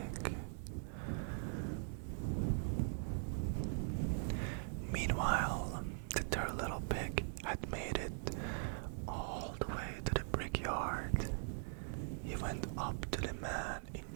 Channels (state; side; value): silent; left; 50 dB below the other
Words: Meanwhile, the third little pig had made it all the way to the brickyard. He went up to the man in